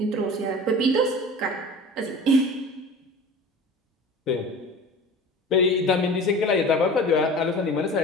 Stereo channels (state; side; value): normal; both; correlation 0.38